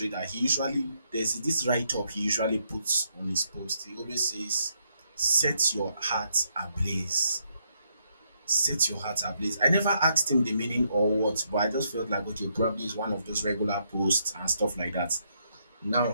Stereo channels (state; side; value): inverted; both; correlation -0.76